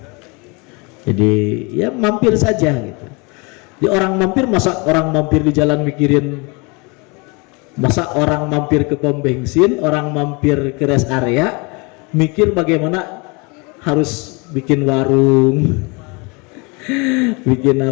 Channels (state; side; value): quieter; right; 29.2 dB